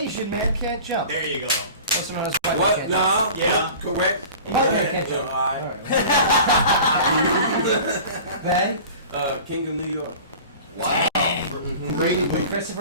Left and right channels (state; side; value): inverted; both; correlation -0.40